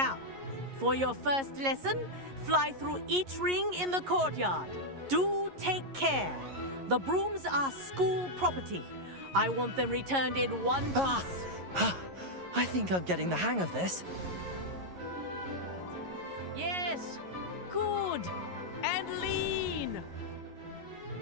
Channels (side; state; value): left; late; 11 ms